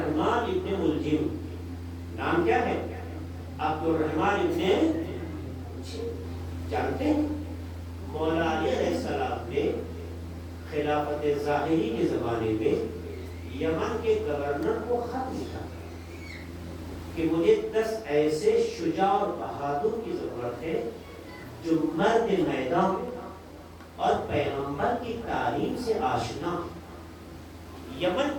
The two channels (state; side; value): identical; both; correlation 1.00